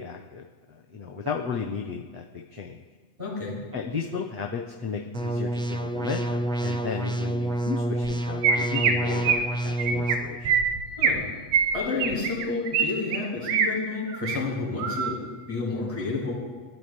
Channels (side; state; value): left; late; 8.1 ms